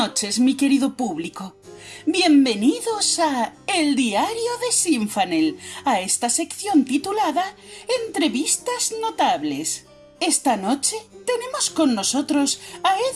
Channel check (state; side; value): identical; both; correlation 1.00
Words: mi querido público. Bienvenidos a El Diario de Sinfanel, a esta sección titulada Entrevistas Notables. Esta noche tenemos con nosotros a